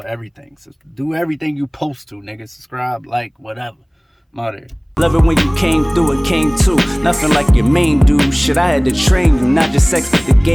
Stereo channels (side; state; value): both; identical; correlation 1.00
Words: everything. So do everything you post to, nigga. Subscribe, like, whatever. I'm out here. Love it when you came through and came too. Nothing like your main dude. Shit, I had to train you, not just sex, but the